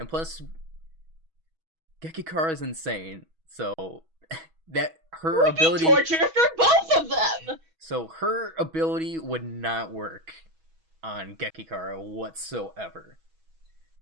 plus, Gekikara is insane, so that her We ability need torture for both of them. So her ability would not work on Gekikara whatsoever.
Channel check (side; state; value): left; late; 6.2 ms